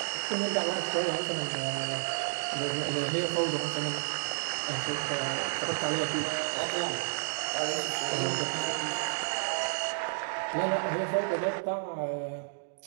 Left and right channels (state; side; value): silent; left; digital silence